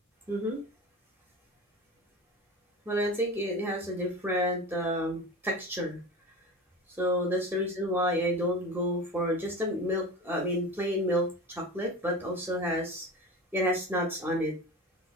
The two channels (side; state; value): both; normal; correlation 0.31